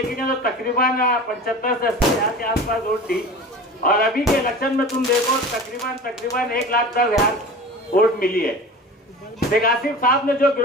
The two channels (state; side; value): normal; both; correlation 0.36